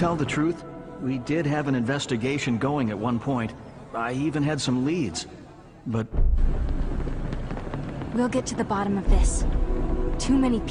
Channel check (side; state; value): both; identical; correlation 1.00